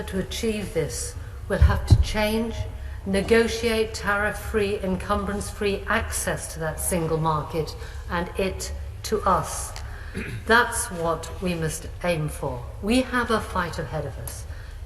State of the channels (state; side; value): identical; both; correlation 1.00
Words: to achieve this, we'll have to change, negotiate tariff-free, encumbrance-free access to that single market and it to us. That's what we must aim for. We have a fight ahead of us